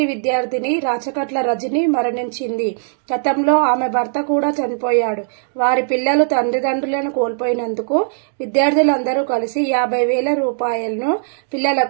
విద్యార్థిని రాచకట్ల రజని మరణించింది. గతంలో ఆమె భర్త కూడా చనిపోయాడు. వారి పిల్లలు తల్లిదండ్రులను కోల్పోయినందుకు విద్యార్థులందరూ కలిసి 50,000 రూపాయలను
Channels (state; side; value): silent; left; digital silence